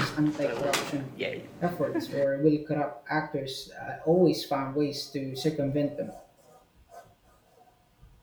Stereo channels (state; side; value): identical; both; correlation 1.00